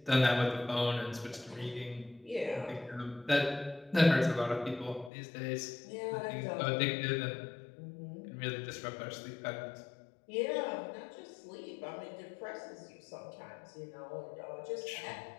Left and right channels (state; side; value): drops out; right; at 5.1 s